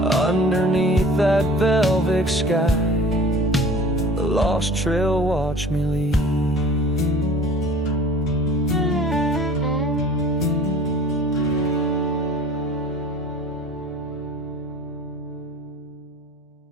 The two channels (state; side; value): normal; both; correlation 0.45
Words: Underneath that velvet sky, the lost trail watched me leave.